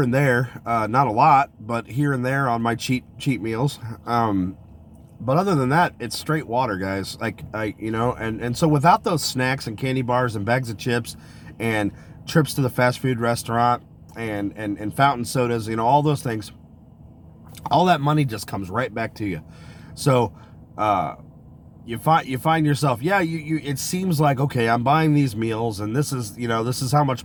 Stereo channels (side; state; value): both; identical; correlation 1.00